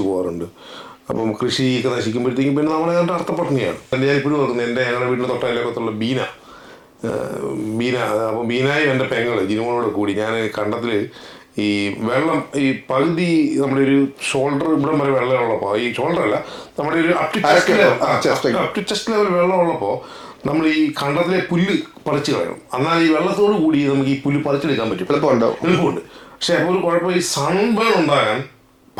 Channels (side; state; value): both; identical; correlation 1.00